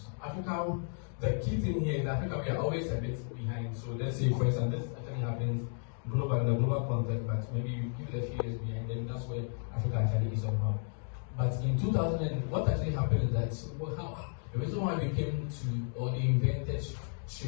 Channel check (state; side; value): silent; right; 56 dB below the other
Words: Africa, the key thing here is Africa, we are always a bit behind. So let's say, for instance, this actually happens in the global context, but maybe you give it a few years behind, then that's where Africa actually is somehow. But in 2000, what actually happened is that the reason why we came to, or they invented